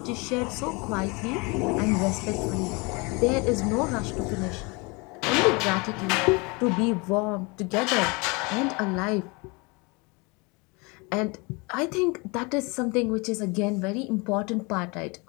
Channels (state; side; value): quieter; right; 28.4 dB